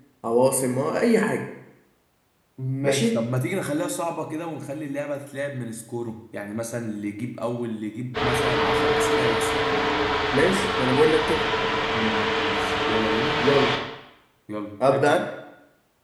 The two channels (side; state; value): both; identical; correlation 1.00